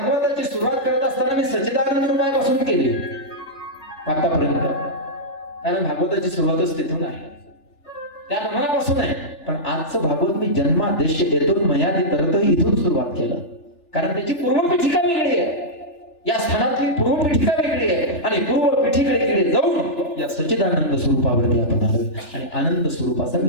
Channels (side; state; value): right; late; 3.4 ms